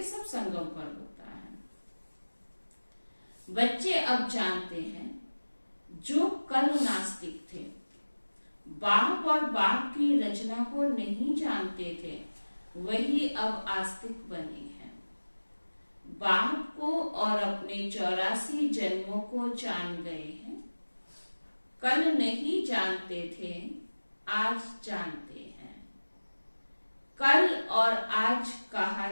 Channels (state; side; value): inverted; both; correlation -1.00